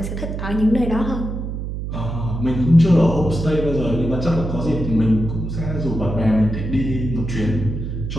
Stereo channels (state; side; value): noise; right; hum, 5 dB below the sound